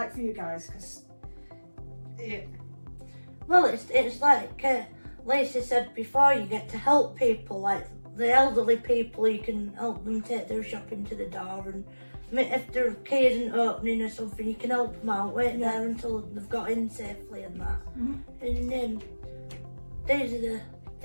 for you guys? 'Cause Yeah. Well, it's like Lisa said before, you get to help people, like the elderly people, you can help them take their shopping to the door, and if their key isn't opening or something, you can help them out, wait there until they've got in safely and that. And these are the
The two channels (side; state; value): both; inverted; correlation -1.00